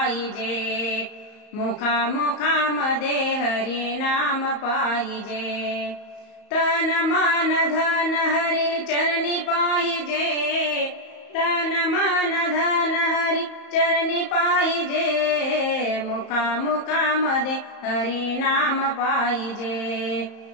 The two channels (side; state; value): right; late; 34 ms